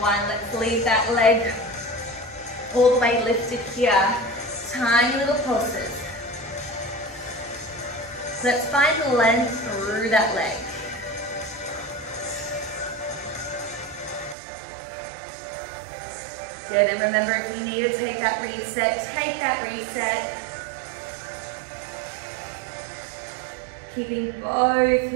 1. Let's leave that leg all the way lifted here. Tiny little pulses. Let's find length through that leg. Good, and remember, if you need to take that reset, take that reset. Keeping both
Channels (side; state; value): left; drops out; at 14.4 s